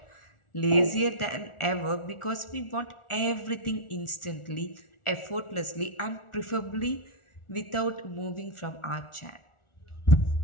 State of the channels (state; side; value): late; right; 1.4 ms